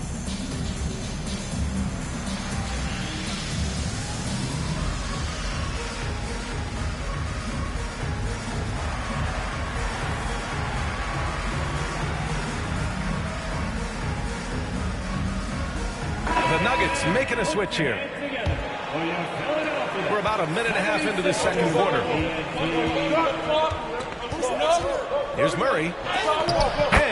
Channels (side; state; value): both; identical; correlation 1.00